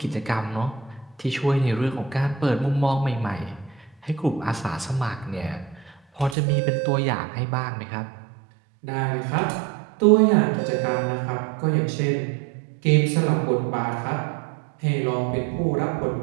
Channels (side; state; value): left; drops out; at 6.4 s